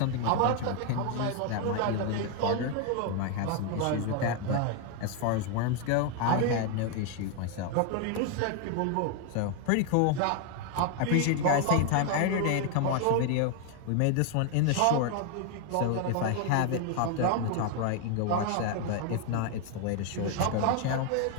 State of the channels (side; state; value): both; different; correlation 0.01